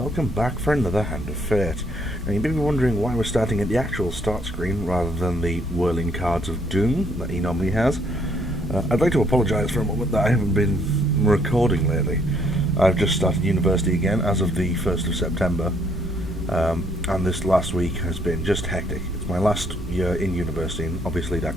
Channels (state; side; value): normal; both; correlation 0.67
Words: back for another Hand of Fate. Now, you may be wondering why we're starting at the actual start screen rather than the whirling cards of doom that he normally has. I'd like to apologise for a moment that I haven't been recording lately. I've just started university again as of the 1st of September, and this last week has been just hectic. It's my last year in university, and obviously